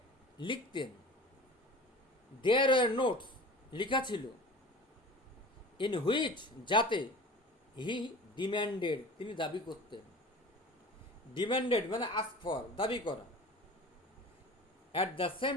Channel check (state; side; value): normal; both; correlation 0.38